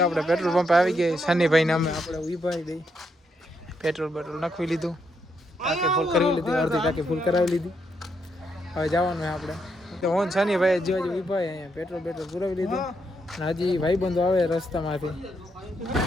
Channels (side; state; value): both; normal; correlation 0.78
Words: આપણે પેટ્રોલ પંપ આવી ગઈ, શનિભાઈને અમે આપણે ઉભાઈ દઈ પેટ્રોલ નાખવી લીધું, ટાંકી ફૂલ કરવી લીધી, અડધી ટાંકી ફૂલ કરાવી લીધી. હવે જવાનું આપણે તો હું શનિભાઈ જો ઉભાઈ અહીંયા પેટ્રોલ પુરાવી લીધું. અને હજી ભાઈબંધો આવે રસ્તામાંથી.